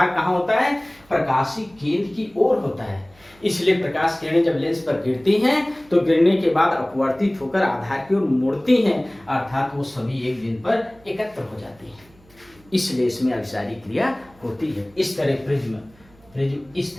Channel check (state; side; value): noise; right; hum, 28 dB below the sound